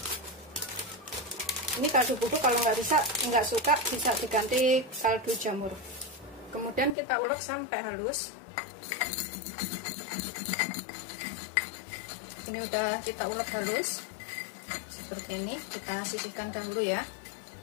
Ini kaldu bubuk kalau nggak suka bisa diganti kaldu jamur. Kemudian kita ulek sampai halus. Ini udah kita ulek halus seperti ini. Kita sisihkan dahulu ya.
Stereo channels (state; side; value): drops out; right; at 7.0 s